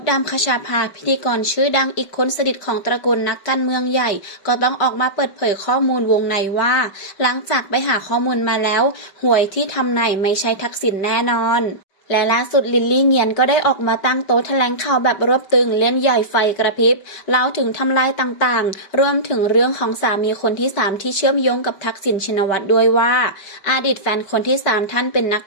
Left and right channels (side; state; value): right; late; 5.1 ms